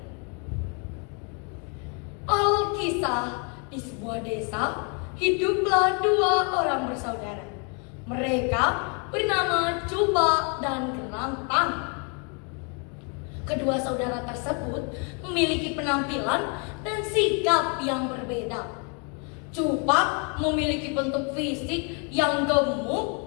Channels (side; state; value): right; quieter; 36.7 dB